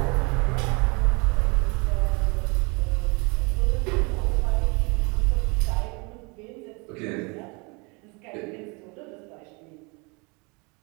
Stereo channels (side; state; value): left; quieter; 29.7 dB